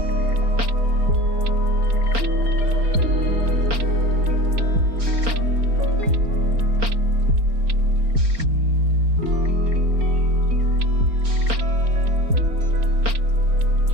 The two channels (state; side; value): late; left; 4.4 ms